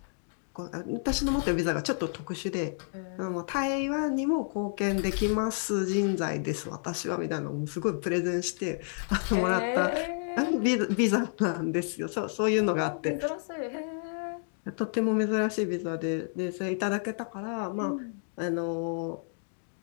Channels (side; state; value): right; silent; digital silence